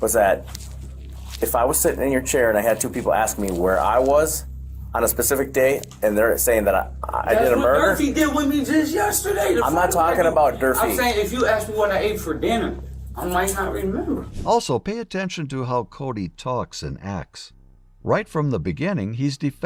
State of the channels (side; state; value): both; identical; correlation 1.00